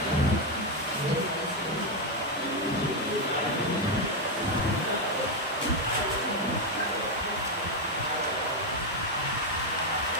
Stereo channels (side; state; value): both; normal; correlation 0.04